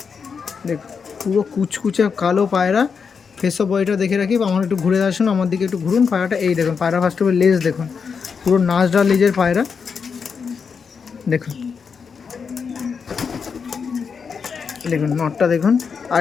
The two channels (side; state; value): right; quieter; 5.9 dB